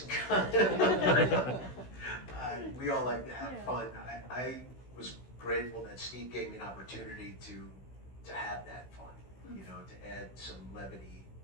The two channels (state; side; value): late; right; 16 ms